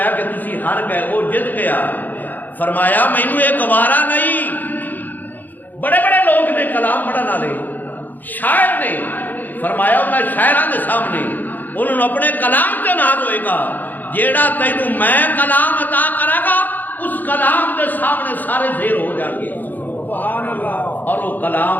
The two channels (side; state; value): right; late; 0.085 ms